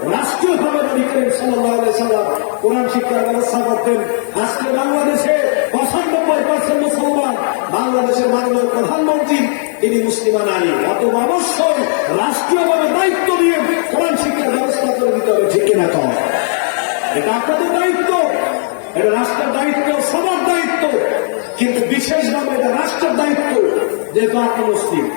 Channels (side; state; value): right; silent; digital silence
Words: রাষ্ট্রীয়ভাবে নবী করিম সাল্লাল্লাহু আলাইহি ওয়াসাল্লাম কোরআন শিক্ষার ব্যবস্থা করতেন। আজকে বাংলাদেশে 95% মুসলমান, বাংলাদেশের মাননীয় প্রধানমন্ত্রী তিনি মুসলিমা নারী। অতএব অবশ্যই রাষ্ট্রীয়ভাবে দায়িত্ব নিয়ে কোরআন শিক্ষার ব্যবস্থা করে দিতে হবে, ঠিক কিনা? কম এটা আপনাদের দায়িত্ব, এটা রাষ্ট্রের দায়িত্ব, সবার দায়িত্ব, কিন্তু বিশেষভাবে এটা রাষ্ট্রের দায়িত্ব। যেহেতু আপনি মুসলিম,